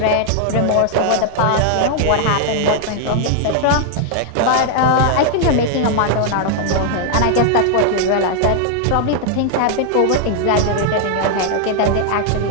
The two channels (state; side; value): different; both; correlation 0.00